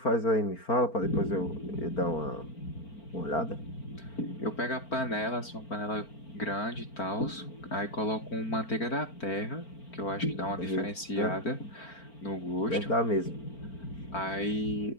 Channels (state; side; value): late; right; 4.4 ms